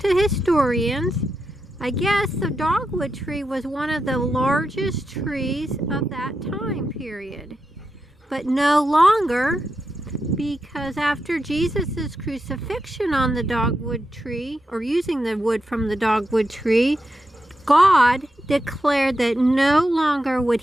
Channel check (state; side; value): normal; both; correlation 0.87